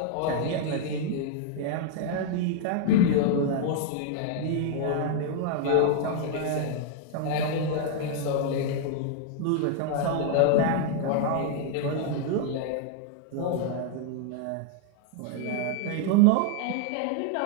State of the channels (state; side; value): different; both; correlation 0.00